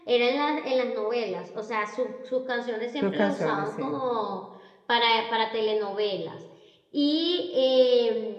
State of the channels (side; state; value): both; identical; correlation 1.00